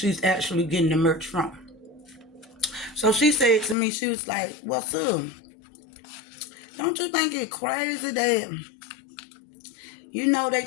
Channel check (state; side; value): drops out; right; at 3.8 s